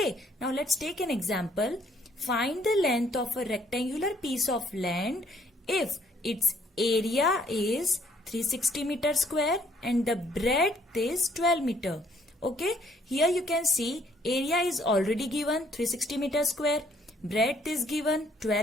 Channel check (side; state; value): both; normal; correlation 0.65